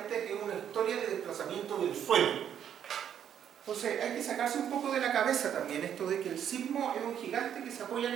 es una historia de desplazamiento del suelo. Entonces hay que sacarse un poco de la cabeza también esto de que el sismo es un gigante que se apoya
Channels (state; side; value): quieter; left; 9.2 dB